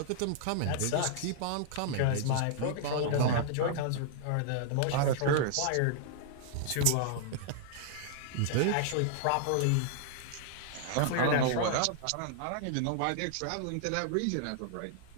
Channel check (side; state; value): both; different; correlation -0.01